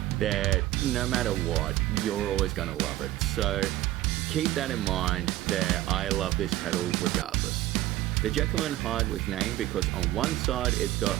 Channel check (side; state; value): left; quieter; 15.5 dB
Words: that no matter what, you're always going to love it. So keep that in mind that I love this pedal regardless. The Jekyll and Hyde was named because on one side it's